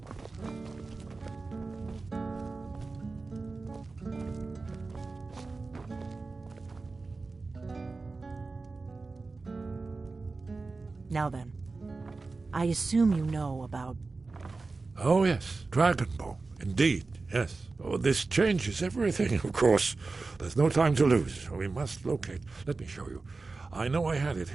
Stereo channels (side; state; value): left; quieter; 3.8 dB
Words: Now then, I assume you know about... Oh yes, Dragonbone. Indeed, Yes. Oh, this changes everything, of course. There's no time to lose. We must locate. Let me show you. I know I had it